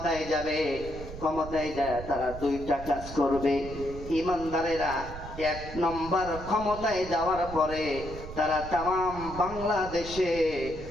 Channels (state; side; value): noise; right; rumble, 11 dB below the sound